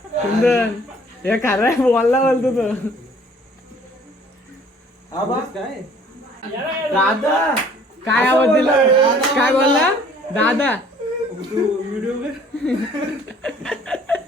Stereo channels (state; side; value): normal; both; correlation 0.55